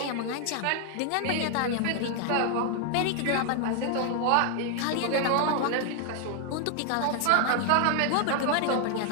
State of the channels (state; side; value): different; both; correlation 0.00